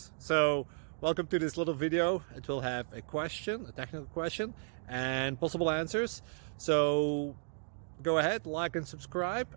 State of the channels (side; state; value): left; silent; digital silence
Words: So welcome to this little video. It will have a question, a technical question, and possible answers. So go ahead, like and subscribe,